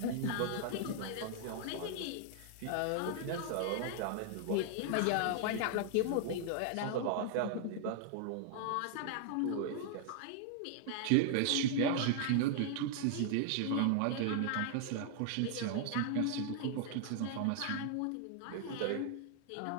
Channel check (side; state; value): both; different; correlation 0.00